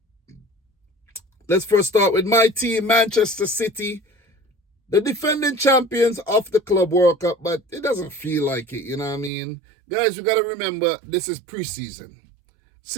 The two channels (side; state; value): left; drops out; at 9.3 s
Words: Let's first start with my team, Manchester City, the defending champions of the Club World Cup, but it doesn't feel like it, you know what I mean? Guys, we got to remember, this is preseason.